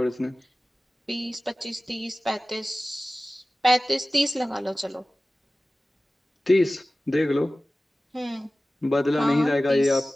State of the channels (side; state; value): both; normal; correlation 0.97